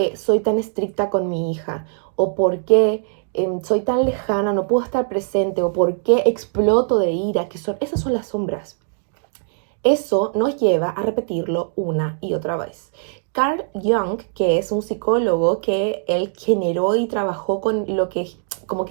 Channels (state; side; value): silent; left; digital silence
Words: soy tan estricta con mi hija, o por qué soy tan lejana, no puedo estar presente, o por qué exploto de ira, esas son las sombras. Eso nos lleva a repetirlo una y otra vez. Carl Jung, que es un psicólogo que él generó y trabajó con lo que